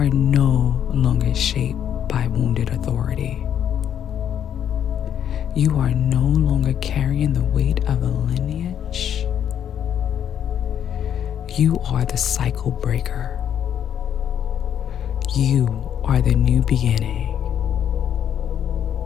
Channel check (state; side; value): quieter; right; 9.4 dB